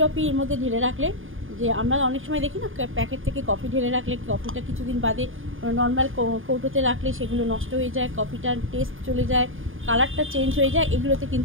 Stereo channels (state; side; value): late; left; 0.59 ms